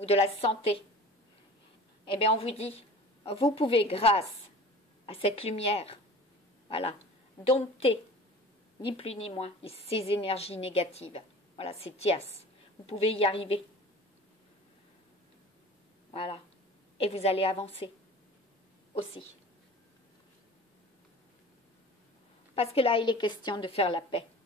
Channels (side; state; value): both; normal; correlation 0.41